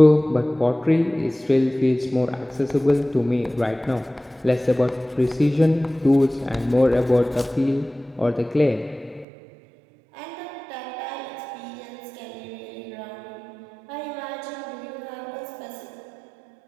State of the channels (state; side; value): drops out; left; at 9.2 s